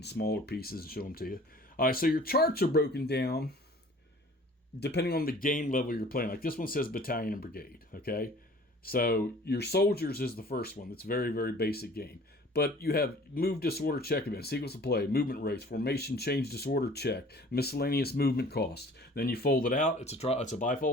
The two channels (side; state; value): both; normal; correlation 0.49